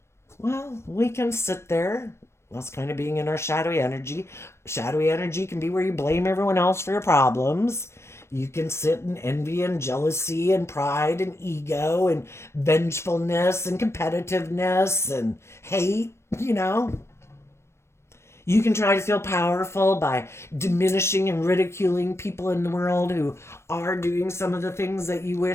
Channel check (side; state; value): right; late; 0.13 ms